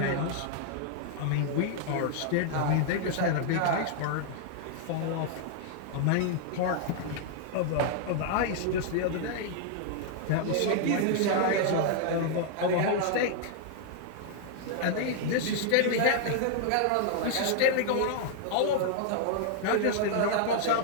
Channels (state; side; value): different; both; correlation 0.00